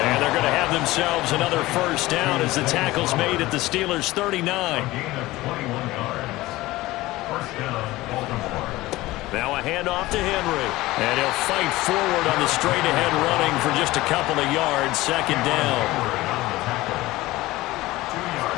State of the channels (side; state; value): right; quieter; 18.4 dB